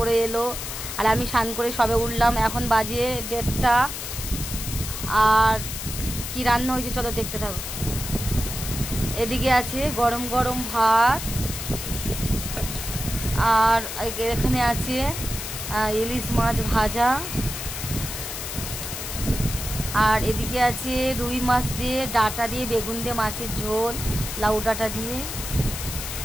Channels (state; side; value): noise; left; hiss, 6 dB below the sound